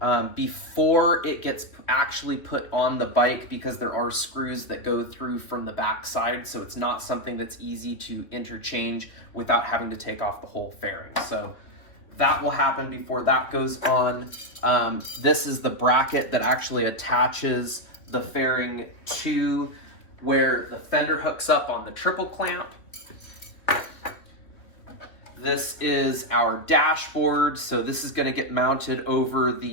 before it gets actually put on the bike, because there are screws that go through from the back side, so it's not something that's easy to interchange without having to take off the whole fairing. So that will happen before that goes on. This is the bracket that actually attaches the fairing to where the fender hooks up on the triple clamp. This is our dashboard, so this is going to get mounted over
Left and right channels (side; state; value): right; late; 2.9 ms